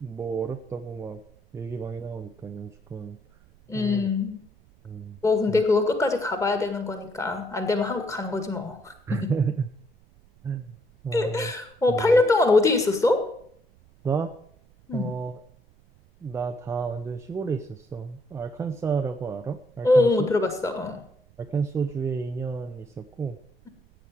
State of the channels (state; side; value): noise; right; rumble, 29 dB below the sound